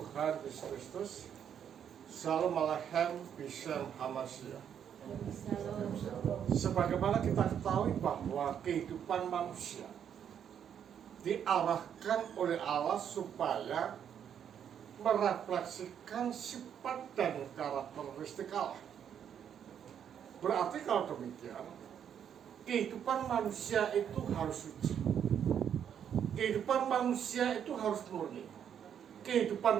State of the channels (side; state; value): left; quieter; 8.7 dB